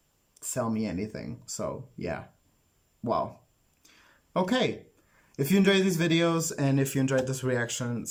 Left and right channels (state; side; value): identical; both; correlation 1.00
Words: sell me anything. So yeah. Wow. Okay. If you enjoyed these videos and if you enjoyed this reaction,